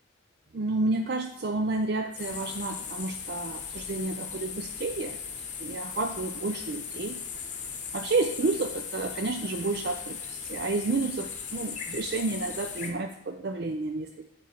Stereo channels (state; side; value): normal; both; correlation 0.18